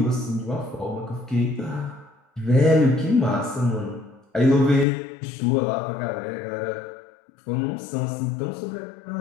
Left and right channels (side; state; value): right; drops out; at 4.9 s